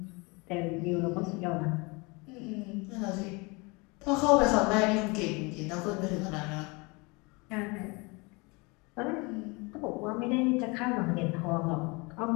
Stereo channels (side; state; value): right; quieter; 27.7 dB